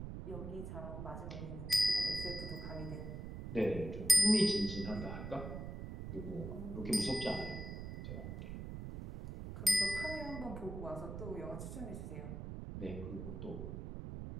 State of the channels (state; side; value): noise; right; rumble, 7 dB below the sound